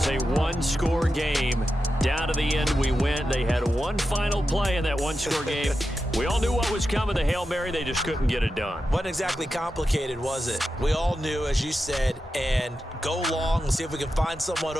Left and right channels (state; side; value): normal; both; correlation 0.90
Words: a one-score game. Down to the end we went. They had one final play in that one-score game. We all knew what was coming, the Hail Mary. They just couldn't get it done. Wasn't exactly complicated, was it? We all knew, as you said, and go long and see if we can find someone